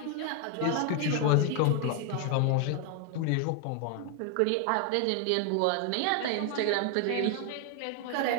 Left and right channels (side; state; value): both; different; correlation 0.00